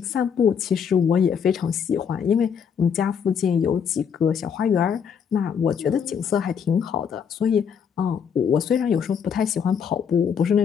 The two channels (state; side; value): quieter; right; 7.2 dB